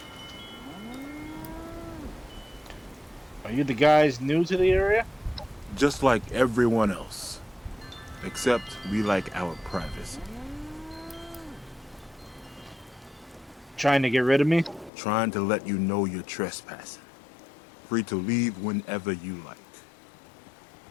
Are you the guys new to the area? Just like everyone else. Except we like our privacy. Trying to get rid of me? Trying to let you know you're trespassing. Free to leave whenever you like.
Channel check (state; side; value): drops out; right; at 14.9 s